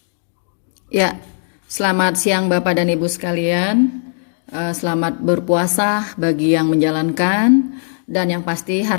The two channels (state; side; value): silent; right; digital silence